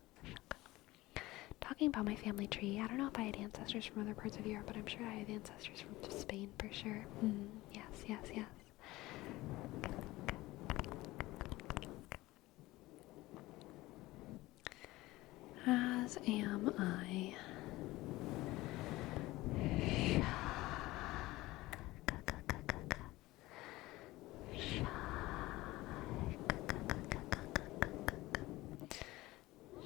Talking about my family tree, I don't know if I had ancestors from other parts of Europe, but I'm sure I have ancestors from Spain for sure. Yes. As am I.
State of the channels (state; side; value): quieter; right; 18.8 dB